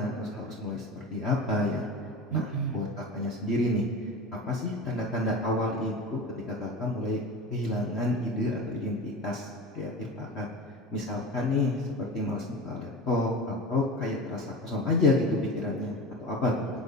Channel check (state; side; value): normal; both; correlation 0.30